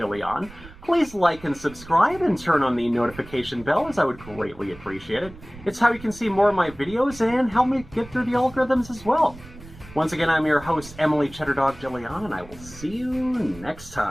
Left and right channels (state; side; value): noise; right; rumble, 19 dB below the sound